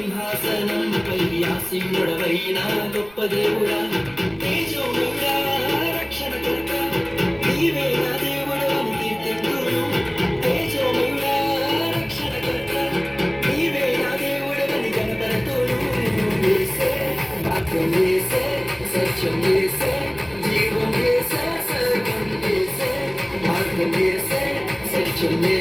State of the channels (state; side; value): noise; right; rumble, 26 dB below the sound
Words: ఆసీనుడవైన గొప్ప దేవుడా, తేజోమయుడా, రక్షణకర్త, నీవే నా దేవుడు అని కీర్తింతును. తేజోమయుడా, రక్షణకర్త, నీవే నా దేవుడు అని కనపడుతును. యేసే, వాక్యం యేసే, సత్యం యేసే, జీవం యేసే, సర్వం యేసే, మార్గం యేసే, సత్యం